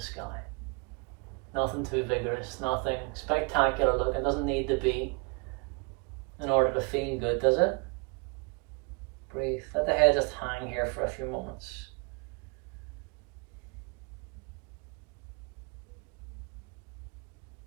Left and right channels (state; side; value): quieter; left; 31.9 dB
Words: Nothing too vigorous, nothing spectacular looking. Doesn't need to be in order to feel good, does it? Breathe. Let the head just hang here for a few moments.